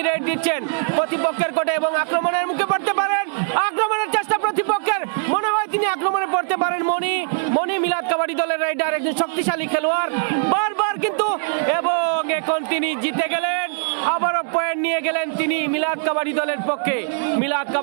রেড দিচ্ছেন প্রতিপক্ষের কোর্টে এবং আক্রমণের মুখে পড়তে পারেন। আক্রমণের চেষ্টা প্রতিপক্ষের, মনে হয় তিনি আক্রমণে পড়তে পারেন মণি মিলাদ কাবাডি দলের রেডার একজন শক্তিশালী খেলোয়াড় বারবার, কিন্তু এবং এখন তিনি জিতে গেলেন। আবারও পয়েন্ট নিয়ে গেলেন তিনি মিলাদ কাবাডি দলের পক্ষে। মিলাদ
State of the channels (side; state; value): left; silent; 58 dB below the other